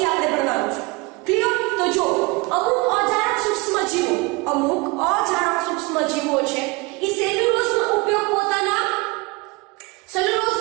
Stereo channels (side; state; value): left; quieter; 25.9 dB